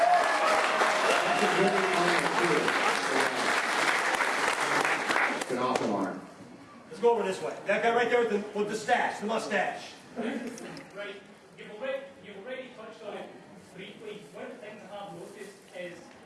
It's an awesome arm. Let's go over this way. That guy right there with the stash, the mustache. Right, you've already touched on it briefly. One of the things I have noticed is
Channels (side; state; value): both; identical; correlation 1.00